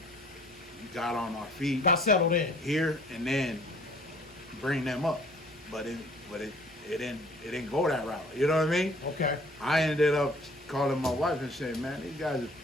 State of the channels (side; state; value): both; normal; correlation 0.54